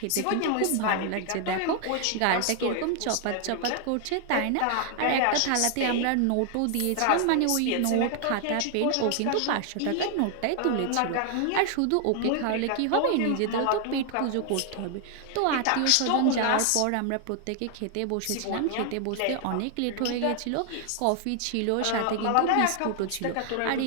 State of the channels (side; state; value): both; different; correlation 0.00